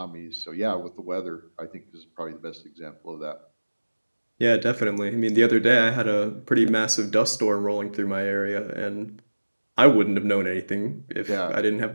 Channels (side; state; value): both; inverted; correlation -1.00